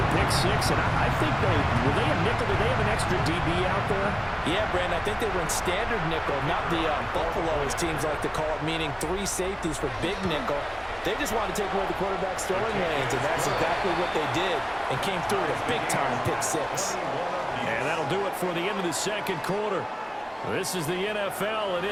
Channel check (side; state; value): both; identical; correlation 1.00